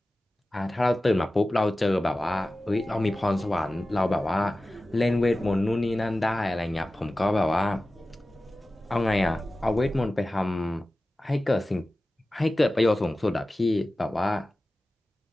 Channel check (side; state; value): both; normal; correlation 0.96